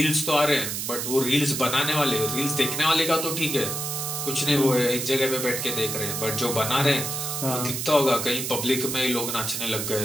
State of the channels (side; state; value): right; noise; hiss, 3 dB below the sound